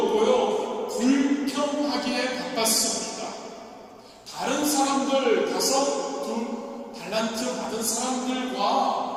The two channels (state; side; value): identical; both; correlation 1.00